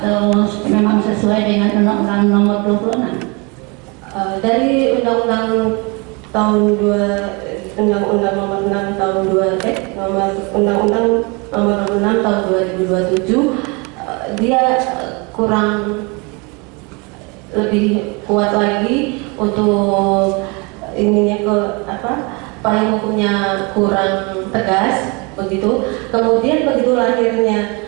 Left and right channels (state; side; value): quieter; left; 29.4 dB